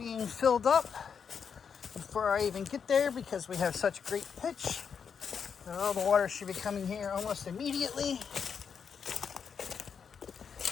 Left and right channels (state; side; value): quieter; right; 6.6 dB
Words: filled up before I even get there because we have such great pitch. All the water should be coming here almost immediately.